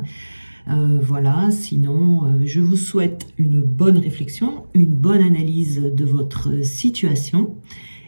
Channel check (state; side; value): inverted; both; correlation -1.00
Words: Voilà, sinon, je vous souhaite une bonne réflexion, une bonne analyse de votre situation.